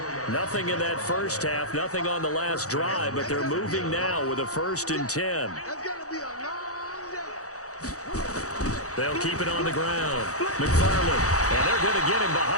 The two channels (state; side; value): late; right; 0.66 ms